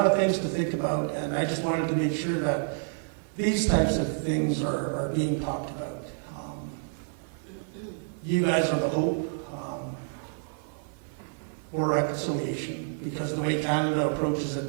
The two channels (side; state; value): left; silent; 59 dB below the other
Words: of things to think about, and I just wanted to make sure that these types of things are being talked about. You guys are the hope for reconciliation, because the way Canada approaches it